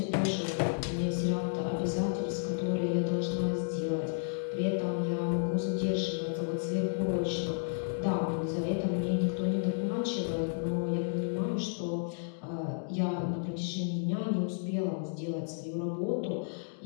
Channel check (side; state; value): right; silent; digital silence